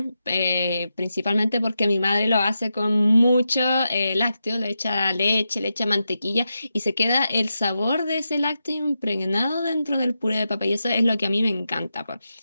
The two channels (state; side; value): inverted; both; correlation -0.88